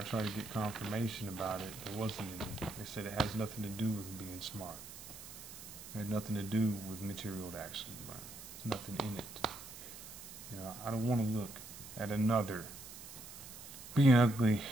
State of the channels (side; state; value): right; noise; hiss, 13 dB below the sound